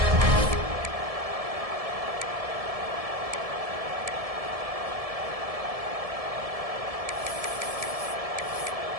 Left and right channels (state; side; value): late; left; 1.7 ms